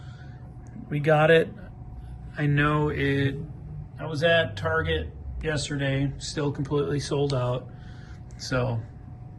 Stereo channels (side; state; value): both; identical; correlation 1.00